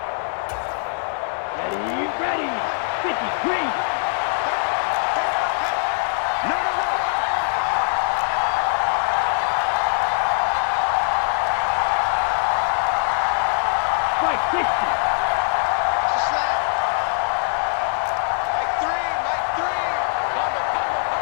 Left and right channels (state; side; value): silent; right; digital silence